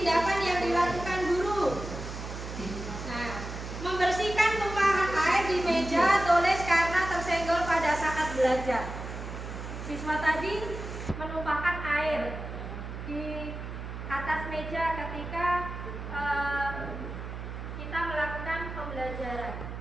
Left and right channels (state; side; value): noise; right; hum, 8 dB below the sound